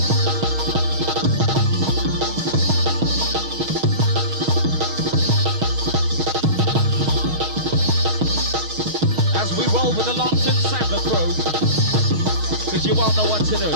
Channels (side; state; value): left; late; 6.4 ms